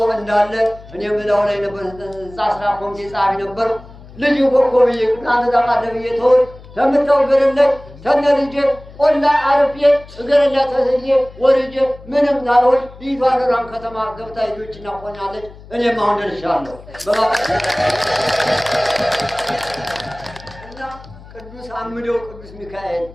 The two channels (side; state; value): left; noise; hum, 19 dB below the sound